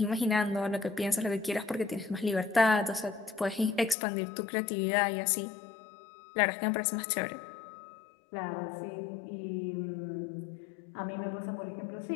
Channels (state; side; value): drops out; right; at 4.0 s